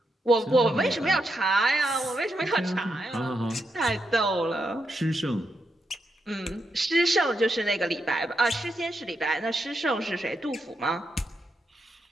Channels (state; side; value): normal; both; correlation 0.83